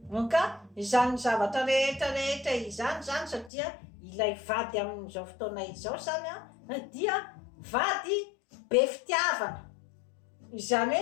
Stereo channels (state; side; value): drops out; right; at 3.5 s